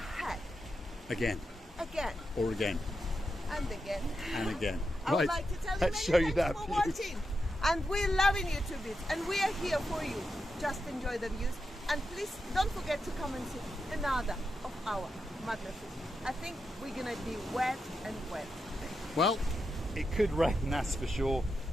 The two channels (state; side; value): normal; both; correlation 0.87